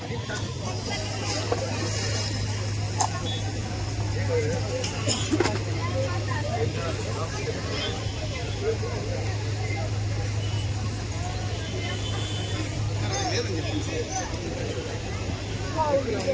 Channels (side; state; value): both; identical; correlation 1.00